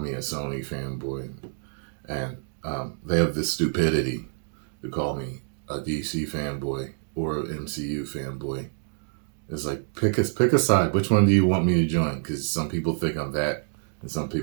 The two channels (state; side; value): silent; left; digital silence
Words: me a Sony fanboy, and they have this stupidity to call me a DC fanboy or an MCU fanboy. It's like, pick a side. Which one do you want me to join? Because some people think I'm that, and some